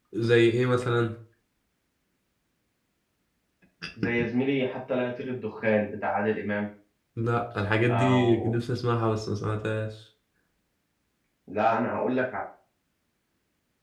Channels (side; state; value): both; identical; correlation 1.00